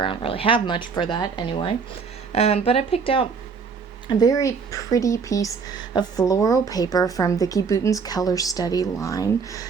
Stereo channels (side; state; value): left; quieter; 5.5 dB